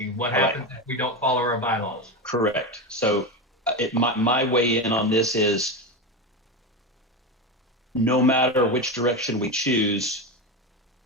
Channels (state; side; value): normal; both; correlation 0.17